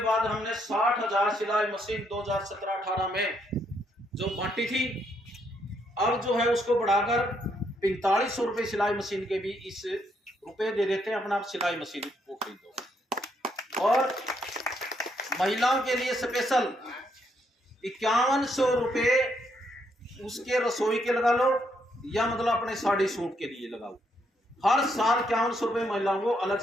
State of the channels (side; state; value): both; normal; correlation 0.74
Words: हमने 60,000 सिलाई मशीन 2017-18 में जो बांटी थी, अब जो है उसको बढ़ाकर 4500 रुपये सिलाई मशीन के भी इस रुपए दे देते हैं, अपना सिलाई मशीन को खरीदो। और महिलाओं के लिए स्पेशल 5100 रुपये उसके रसोई के लगा लो, या मतलब अपने साड़ी सूट के लिए लगाओ। हर साल 5100 रुपए महिलाओं को अलग